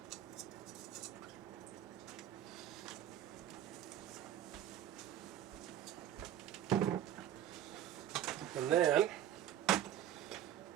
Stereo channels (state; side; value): quieter; left; 11.4 dB